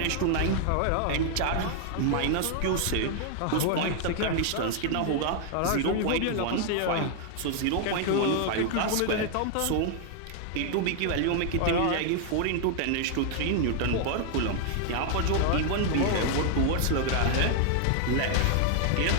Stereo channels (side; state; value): both; different; correlation 0.00